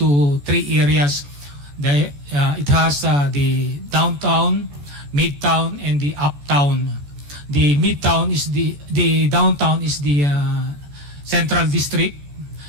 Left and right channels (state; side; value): late; left; 14 ms